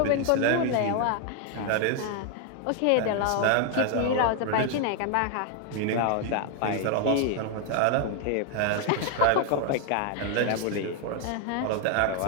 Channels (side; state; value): both; different; correlation 0.00